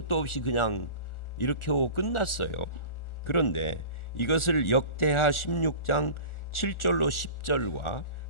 없이 그냥 이렇게 하고 끝났어요. 그런데 이것을 역대하 16장 7절로 10절과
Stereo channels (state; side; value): late; right; 1.4 ms